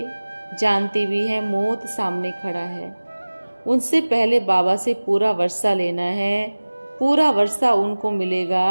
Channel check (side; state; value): both; inverted; correlation -1.00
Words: जानते भी हैं मौत सामने खड़ा है, उनसे पहले बाबा से पूरा वर्षा लेना है। पूरा वर्षा उनको